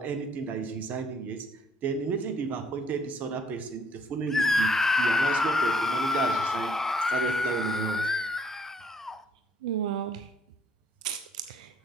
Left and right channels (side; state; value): both; normal; correlation 0.65